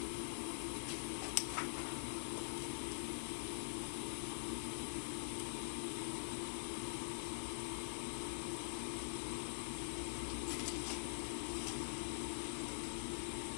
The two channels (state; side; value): silent; right; digital silence